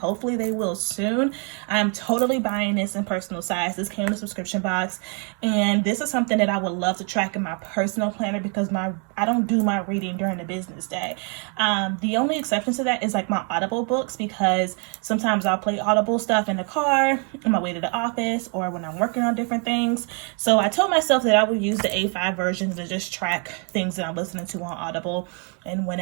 they will soon, I'm totally buying this in personal size. This came in a subscription box, and this is something that I would love to track in my personal planner, because I don't do my reading during the business day. The only exception to that is like my Audible books, because sometimes I'll play Audible stuff in the car on my way to the office or when I'm working on different things. So I told myself that I would use the A5 version to just track things that I'm listening to on Audible. And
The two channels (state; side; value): quieter; left; 38.3 dB